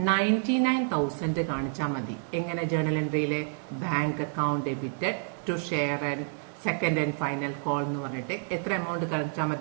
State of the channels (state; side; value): silent; left; 59 dB below the other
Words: 99,000 കാണിച്ചാൽ മതി. എങ്ങനെ? ജേർണൽ എൻട്രിയിലെ bank account debited to share and second and final call എന്ന് പറഞ്ഞിട്ട് എത്ര എമൗണ്ട് കാണിച്ചാൽ